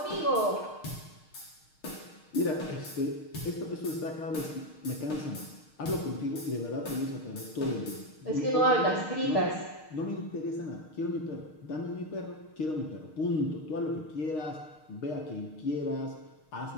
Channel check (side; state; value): right; late; 6.5 ms